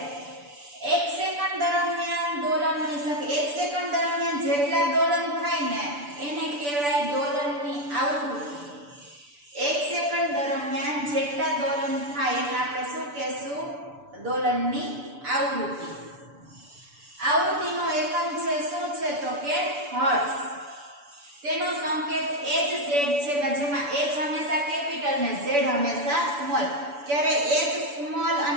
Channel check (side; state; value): left; late; 6.9 ms